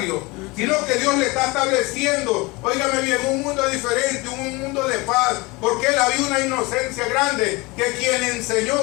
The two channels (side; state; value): right; quieter; 24.4 dB